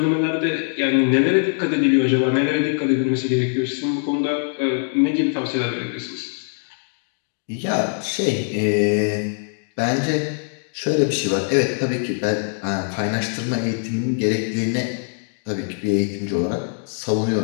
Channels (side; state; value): right; silent; digital silence